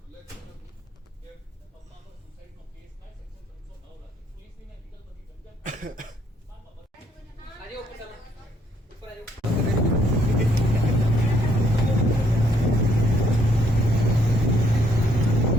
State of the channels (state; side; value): normal; both; correlation 0.68